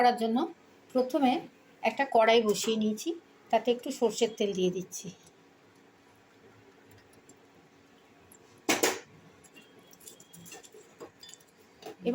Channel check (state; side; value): identical; both; correlation 1.00